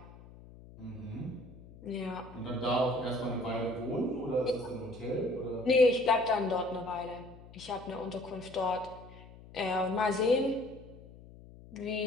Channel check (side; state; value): left; noise; hum, 19 dB below the sound